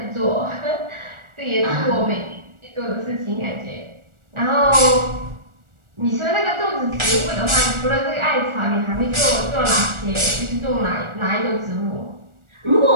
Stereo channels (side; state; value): left; late; 1.4 ms